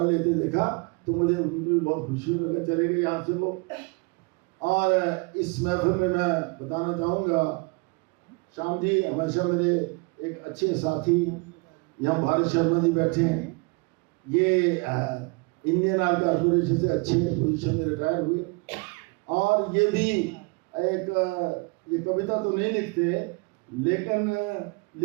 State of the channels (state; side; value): quieter; left; 29.8 dB